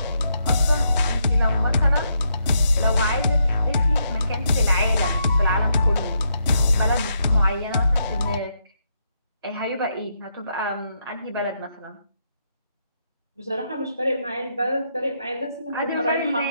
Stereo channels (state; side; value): inverted; both; correlation -0.79